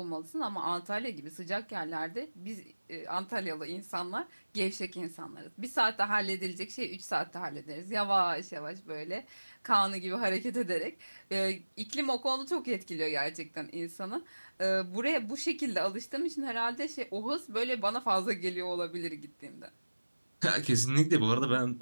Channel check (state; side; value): inverted; both; correlation -1.00